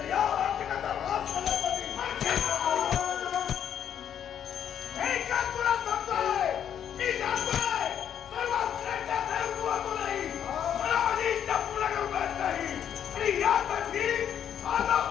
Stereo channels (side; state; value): right; quieter; 9.2 dB